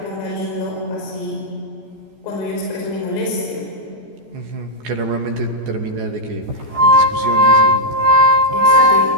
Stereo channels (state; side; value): late; left; 14 ms